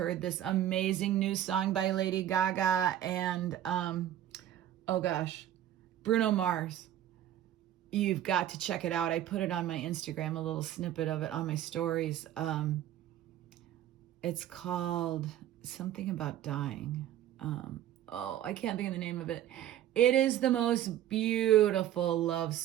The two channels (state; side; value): quieter; left; 11.8 dB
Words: this amazing new song by Lady Gaga and, Bruno Mars. You've got to check it out. I put it on my Instagram, a little snippet of it on my stories. It's called something about dying. I can't think of the name of it. It is the most beautiful love